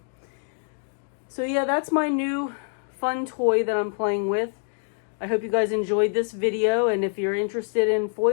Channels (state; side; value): silent; right; 56 dB below the other